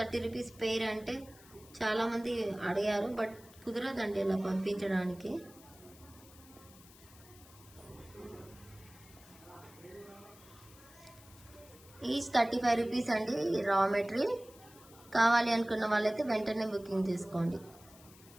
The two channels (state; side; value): noise; left; hiss, 22 dB below the sound